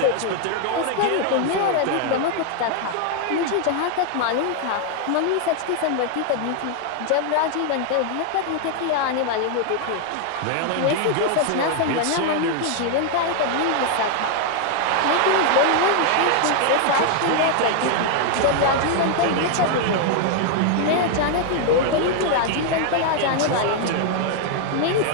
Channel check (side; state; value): both; different; correlation 0.00